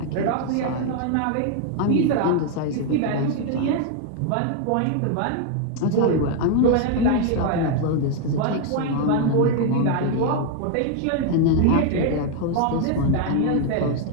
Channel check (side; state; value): both; different; correlation 0.00